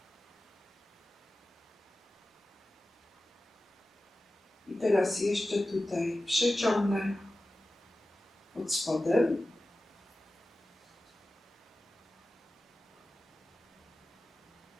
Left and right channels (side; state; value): both; normal; correlation 0.95